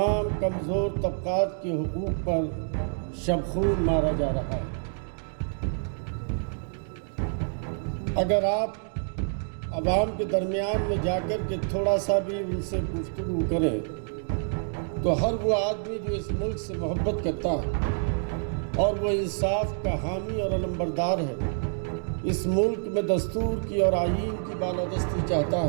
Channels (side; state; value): left; silent; digital silence